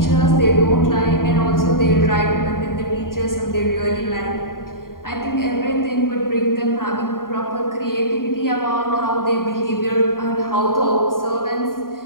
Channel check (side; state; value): right; late; 0.91 ms